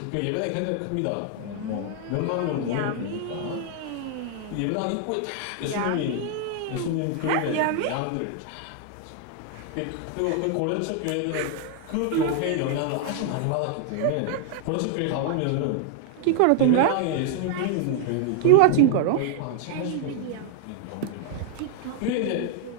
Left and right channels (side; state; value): both; different; correlation 0.00